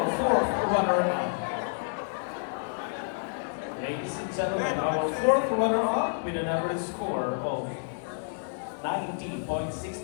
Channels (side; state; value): right; silent; digital silence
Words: fourth runner-up. Ladies and gentlemen, our fourth runner-up with an average score of